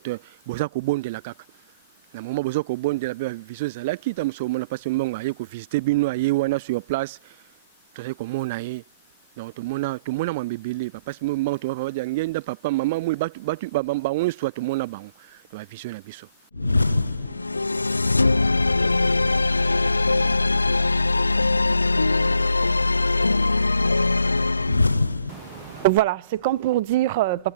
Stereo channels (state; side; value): inverted; both; correlation -0.70